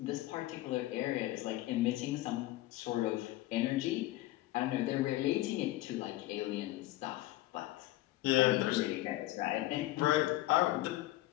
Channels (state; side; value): quieter; right; 16.6 dB